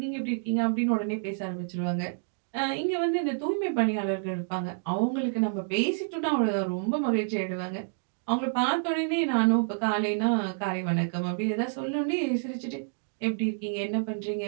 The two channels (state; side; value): silent; left; digital silence